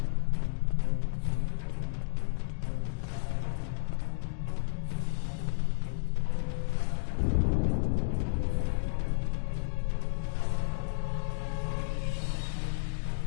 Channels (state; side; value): silent; right; digital silence